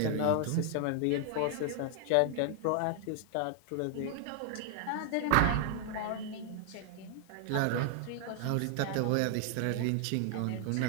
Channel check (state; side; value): different; both; correlation 0.00